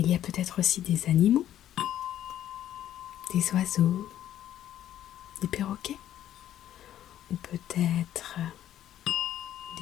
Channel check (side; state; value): right; quieter; 11.7 dB